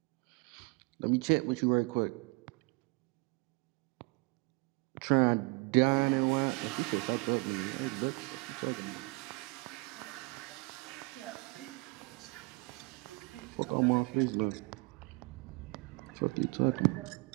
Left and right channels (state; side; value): quieter; left; 27.8 dB